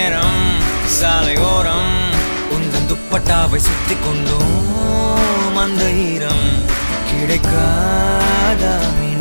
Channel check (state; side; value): inverted; both; correlation -1.00